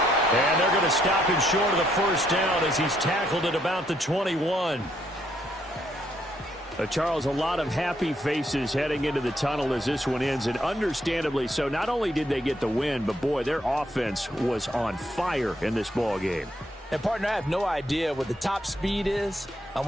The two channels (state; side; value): normal; both; correlation 0.73